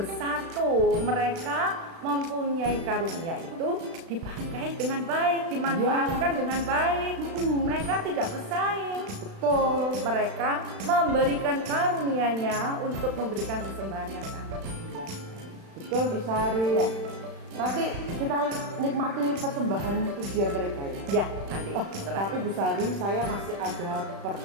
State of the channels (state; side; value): late; left; 36 ms